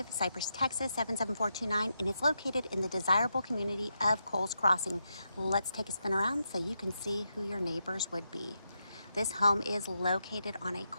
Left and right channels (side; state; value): both; inverted; correlation -0.84